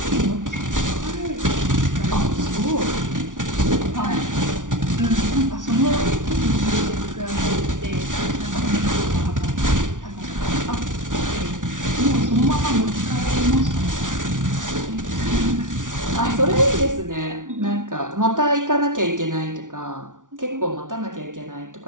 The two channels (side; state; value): left; late; 0.88 ms